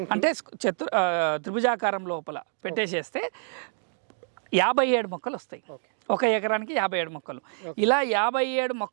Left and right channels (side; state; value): left; silent; digital silence